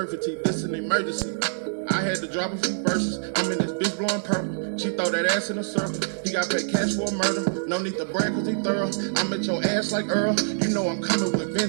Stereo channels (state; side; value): silent; left; 61 dB below the other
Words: teeth. This an emergency. I had to drop a few verses. I'm in this bitch blowing purple. She throw that ass in a circle. He got paid cash for a murder. No need to brag cause he thorough. I'm at your ass like Earl. You know I'm coming with